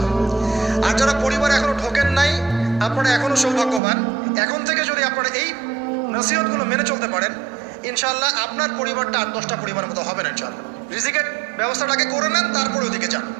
আর যারা পরিবারে এখনো ঢোকেন নাই, আপনারা এখনো সৌভাগ্যবান। এখন থেকে যদি আপনারা এই নসিহতগুলো মেনে চলতে পারেন, ইনশাআল্লাহ আপনার পরিবারটা 8-10টা পরিবারের মতো হবে না। ইনশাআল্লাহ রিজিকের ব্যবস্থাটাকে করে নেন, তারপরে ওদিকে যান।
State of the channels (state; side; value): drops out; left; at 3.8 s